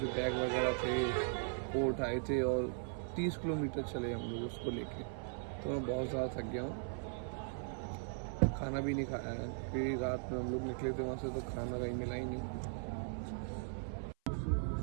बैग वगैरह थे वो उठाए थे और 30 किलोमीटर चले हम लोग उसको लेके, तो मैं बहुत ज़्यादा थक गया हूँ। खाना भी नहीं खाया है क्योंकि रात में हम लोग निकले थे वहाँ से तो खाना कहीं मिला ही नहीं।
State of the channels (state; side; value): silent; left; 52 dB below the other